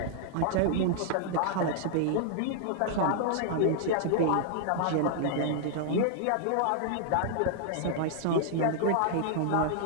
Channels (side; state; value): both; different; correlation -0.01